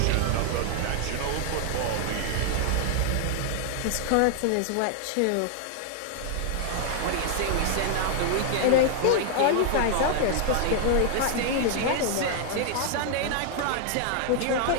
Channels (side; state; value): both; different; correlation 0.00